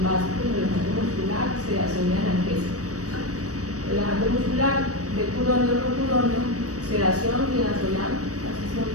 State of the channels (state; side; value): late; left; 0.66 ms